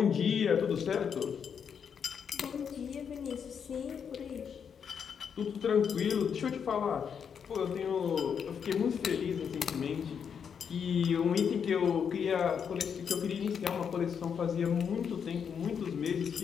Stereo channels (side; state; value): right; quieter; 7.2 dB